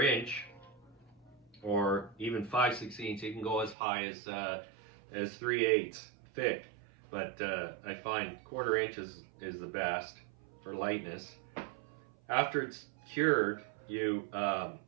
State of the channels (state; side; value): drops out; left; at 3.8 s